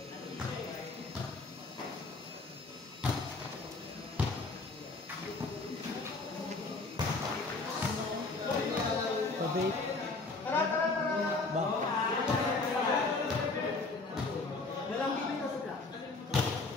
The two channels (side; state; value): right; quieter; 3.6 dB